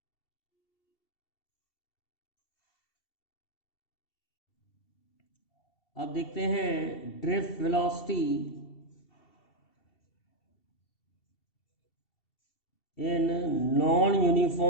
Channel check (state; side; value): late; right; 2.7 ms